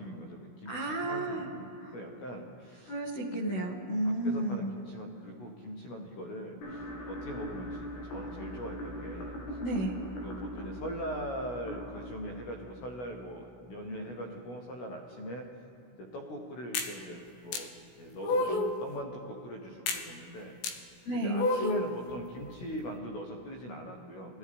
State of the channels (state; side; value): late; right; 16 ms